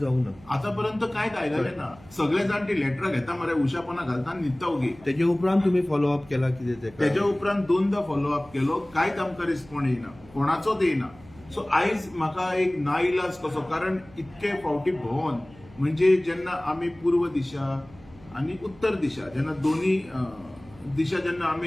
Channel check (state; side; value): noise; right; hum, 23 dB below the sound